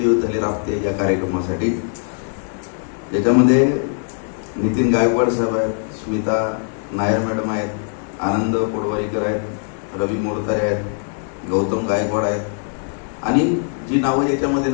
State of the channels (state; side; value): silent; right; 57 dB below the other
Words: झाले राबते या कार्यक्रमासाठी, ज्याच्यामध्ये नितीन गायकवाड साहेब आहेत, स्मिता नायर मॅडम आहेत, आनंद पोडवाईकर आहेत, रवी मोरतारे आहेत, गौतम गायकवाड आहेत आणि जी नावं याच्यामध्ये